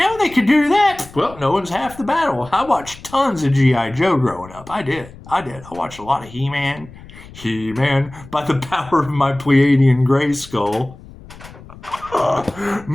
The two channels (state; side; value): noise; left; rumble, 19 dB below the sound